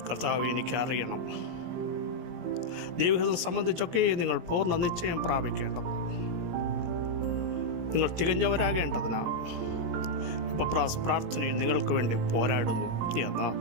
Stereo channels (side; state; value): left; late; 17 ms